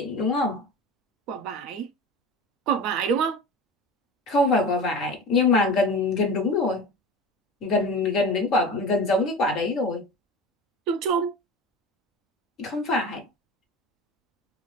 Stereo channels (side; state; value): both; normal; correlation 0.32